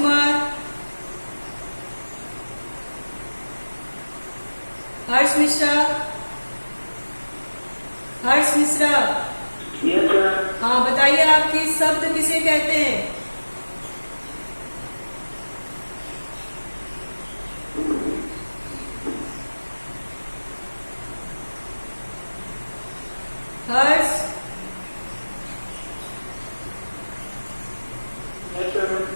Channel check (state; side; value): inverted; both; correlation -1.00